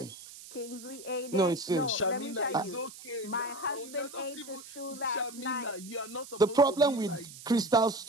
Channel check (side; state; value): right; noise; hiss, 16 dB below the sound